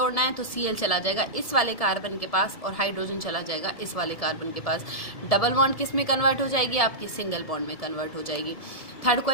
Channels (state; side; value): late; right; 1.7 ms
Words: है तो Cl चला जाएगा इस वाले कार्बन के पास और हाइड्रोजन चला जाएगा इस वाले कार्बन के पास। डबल बॉन्ड किस में कन्वर्ट हो जाएगी, आपकी सिंगल बॉन्ड में कन्वर्ट हो जाएगी। थर्ड